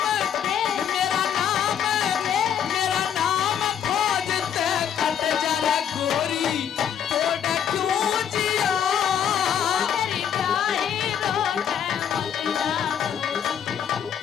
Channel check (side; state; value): right; quieter; 8.8 dB